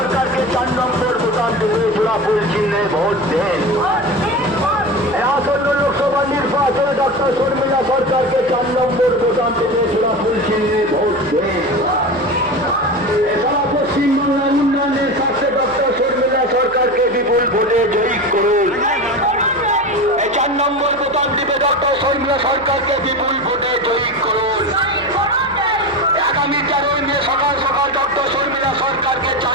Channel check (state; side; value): noise; left; hum, 23 dB below the sound